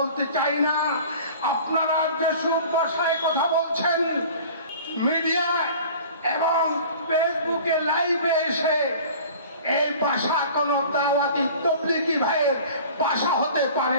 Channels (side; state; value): both; inverted; correlation -0.43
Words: চাই না। আপনারা যেসব ভাষায় কথা বলছেন মিডিয়ায় এবং ফেসবুকে লাইভে এসে, এই ভাষা কোনো দাওয়াতি তবলিগি ভাইয়ের ভাষা হতে পারে